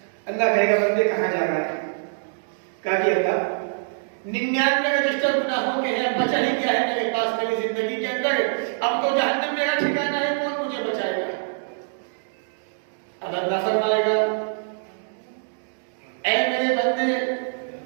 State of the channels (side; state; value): left; silent; digital silence